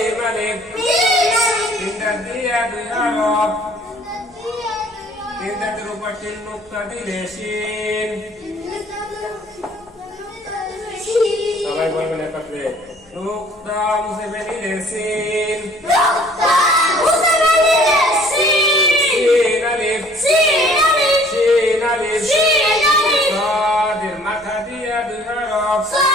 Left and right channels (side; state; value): both; normal; correlation 0.55